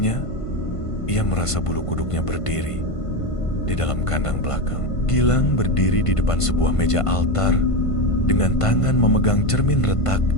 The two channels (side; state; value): right; late; 1.5 ms